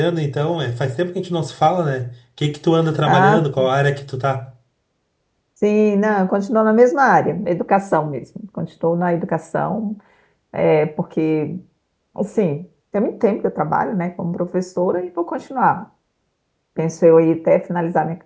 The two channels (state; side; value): identical; both; correlation 1.00